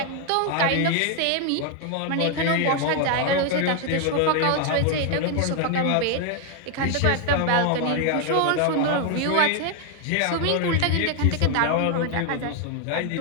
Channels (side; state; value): both; different; correlation 0.00